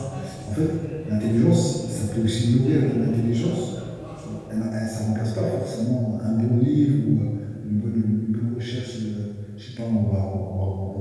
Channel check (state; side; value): identical; both; correlation 1.00